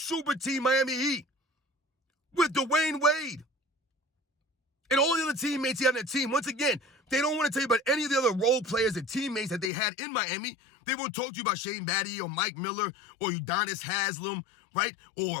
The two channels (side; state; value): right; drops out; at 9.7 s